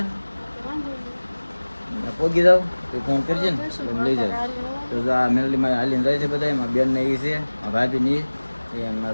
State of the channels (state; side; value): inverted; both; correlation -1.00